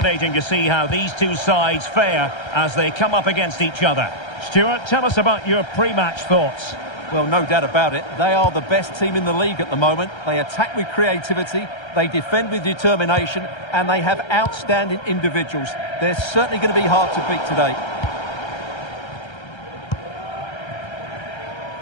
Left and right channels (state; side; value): late; right; 1.3 ms